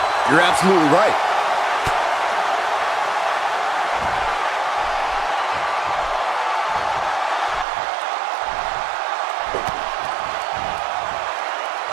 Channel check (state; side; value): drops out; left; at 7.7 s